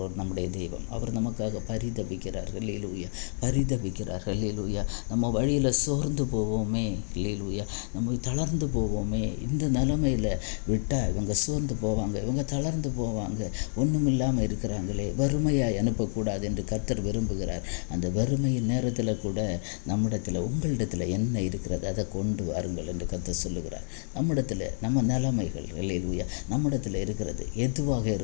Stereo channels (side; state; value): right; silent; 59 dB below the other